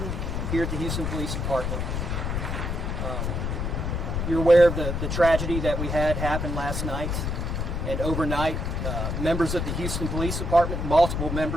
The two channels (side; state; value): left; noise; rumble, 2 dB below the sound